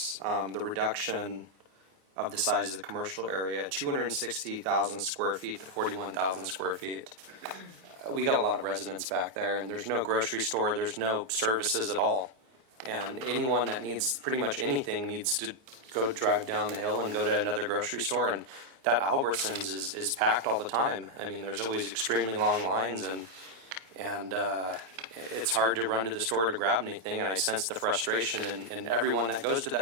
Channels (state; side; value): late; left; 29 ms